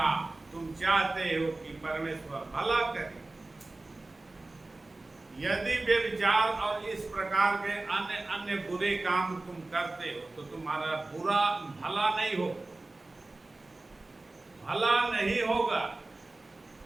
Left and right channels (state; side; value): quieter; left; 3.0 dB